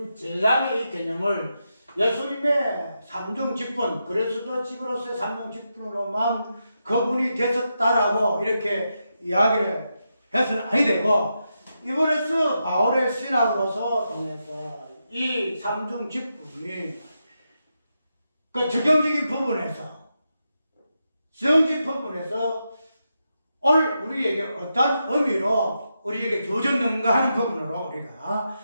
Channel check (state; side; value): inverted; both; correlation -0.86